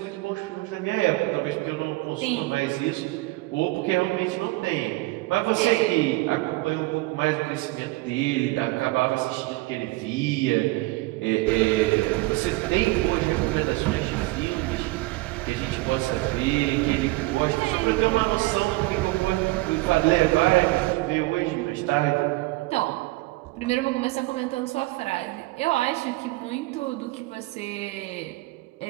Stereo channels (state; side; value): quieter; left; 21.6 dB